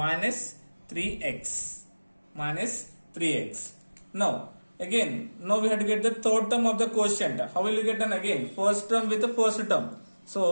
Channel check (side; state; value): both; inverted; correlation -1.00